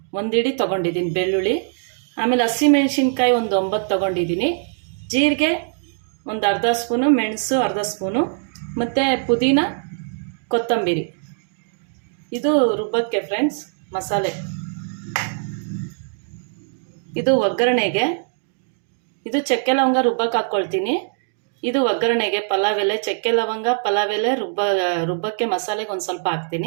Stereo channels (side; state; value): left; silent; digital silence